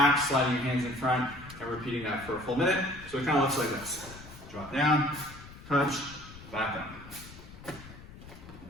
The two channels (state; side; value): noise; left; rumble, 17 dB below the sound